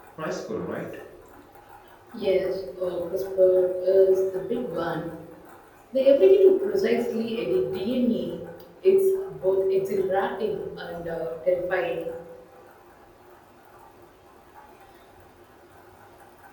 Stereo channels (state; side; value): identical; both; correlation 1.00